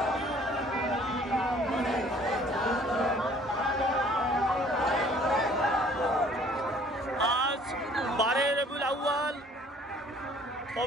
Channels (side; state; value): both; normal; correlation 0.56